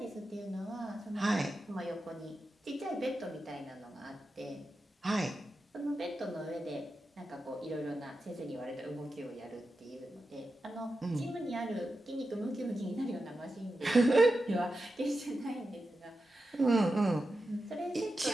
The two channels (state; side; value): normal; both; correlation 0.90